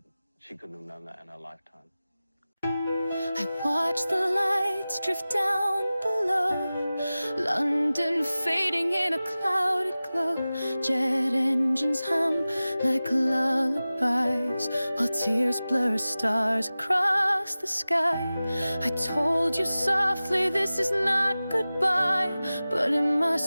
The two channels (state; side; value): inverted; both; correlation -0.97